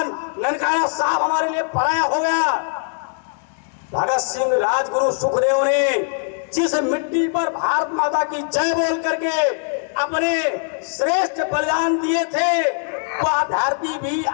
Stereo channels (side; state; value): right; silent; digital silence